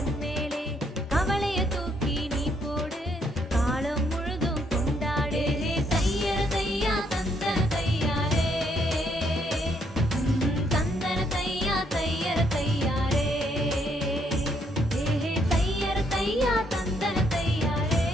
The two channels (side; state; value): both; normal; correlation 0.72